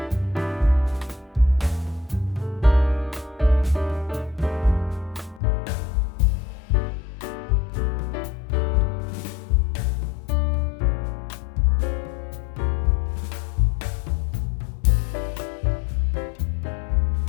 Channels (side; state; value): right; drops out; at 5.4 s